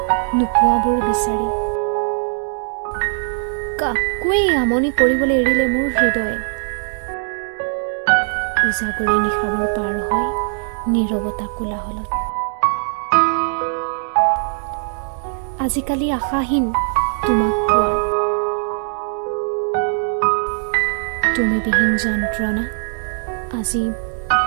নোপোৱাবোৰ বিচাৰি। কাকোৱেই আমনি কৰিবলৈ এৰিলে মোৰ হৃদয়ে। উজাগৰি নিশাবোৰ পাৰ হয় নীৰৱতা কোলাহলত। আজিকালি আশাহীন তোমাক পোৱাৰ। তুমি বিহীন যন্ত্ৰণা আজি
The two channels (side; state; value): left; silent; digital silence